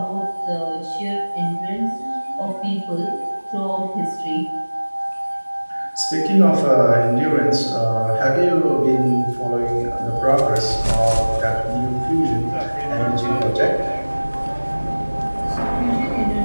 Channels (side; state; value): both; inverted; correlation -1.00